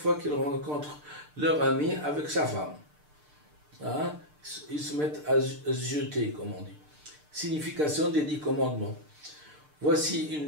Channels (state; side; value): late; left; 6.7 ms